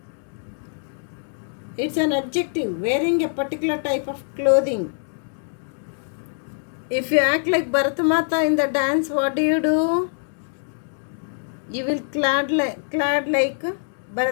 It's an adjective, wearing a particular type of clothing. If you act like Bharatamata in the dance, what do? You will clad like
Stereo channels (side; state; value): right; silent; digital silence